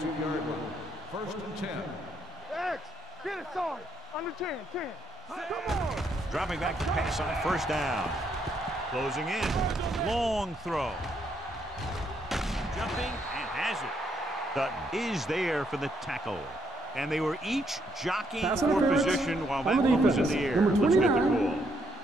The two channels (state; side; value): normal; both; correlation 0.74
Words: line. First and 10. X, get it started. Under 10, 10. Come on. Dropping back to pass on first down. Closing in. Long throw. Jumping and has it. Dutton is there for the tackle. And they were each jockeying for position while that one was in the air. Let's get the call.